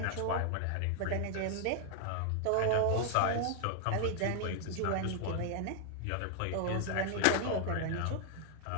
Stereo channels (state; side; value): different; both; correlation 0.00